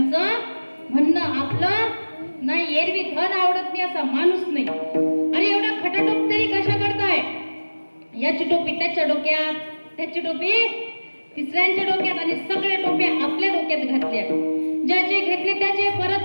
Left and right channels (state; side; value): inverted; both; correlation -1.00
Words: म्हणणं. आपलं नाही एरवी धन आवडत नाही असा माणूस नाही. अरे एवढा खटाटोप तरी कशा करताय? याची टोपी त्याच्या डोक्यात, त्याची टोपी तिसऱ्यांच्या डोक्यात आणि सगळे टोप्या आपल्या डोक्यात घातल्या. ज्याचे घेतले त्याचे परत